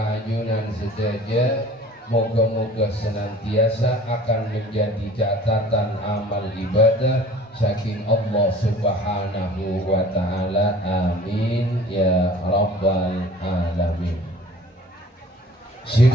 ajunan sedaja, moga-moga senantiasa akan menjadi catatan amal ibadah saking Allah Subhanahu wa ta'ala. Amin ya rabbal alamin. Si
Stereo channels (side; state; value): both; normal; correlation 0.47